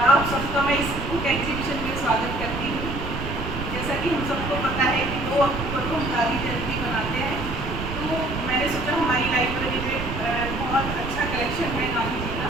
आप सबका मैं इस बुक एग्जीबिशन में स्वागत करती हूँ। जैसा कि हम सबको पता है कि 2 अक्टूबर को हम गांधी जयंती मनाते हैं, तो मैंने सोचा हमारी लाइब्रेरी में बहुत अच्छा कलेक्शन है गांधी जी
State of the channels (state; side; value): noise; right; rumble, 6 dB below the sound